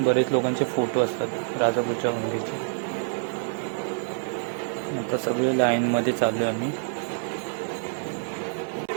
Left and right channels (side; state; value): left; silent; digital silence